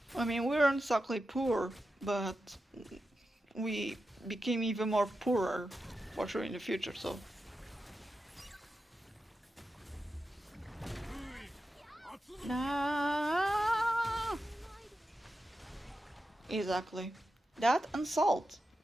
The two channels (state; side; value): normal; both; correlation 0.90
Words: I mean, we weren't exactly poor, but we became even more poorer for sure in the future, so. Nah. Exactly. That and salt.